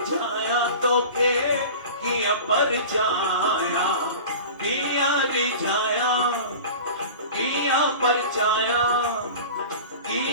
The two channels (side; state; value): both; inverted; correlation -0.36